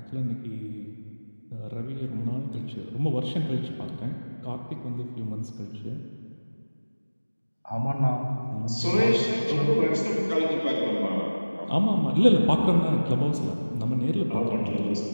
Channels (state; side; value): inverted; both; correlation -1.00